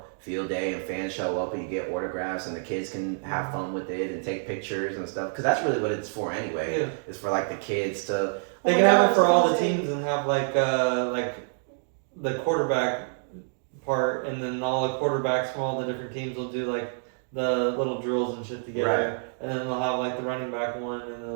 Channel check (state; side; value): silent; left; digital silence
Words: field day, and fans show up, and you get autographs, and the kids can have fun with it and take pictures and stuff, because that's really what it's for anyway. Yeah. It's for like the kids to. They can have it for all the teams and have like the quarterback part, and then all the quarterbacks from all the different teams will do like the little drills and shit together, Right. and then they'll have like the running back one, and then